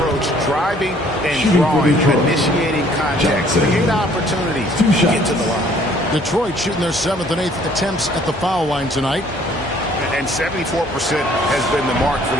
driving and drawing, initiating contact, create opportunities to get to the line. Detroit shooting their 7th and 8th attempts at the foul line tonight. And 74% has been the mark for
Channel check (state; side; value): normal; both; correlation 0.59